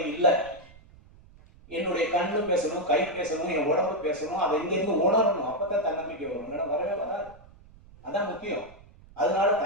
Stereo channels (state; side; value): noise; right; rumble, 24 dB below the sound